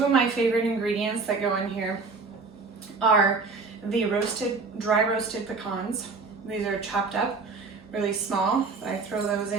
of my favorite ingredients that go in here are the dry roasted pecans. These are chopped up really small. I throw those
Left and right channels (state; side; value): quieter; left; 4.3 dB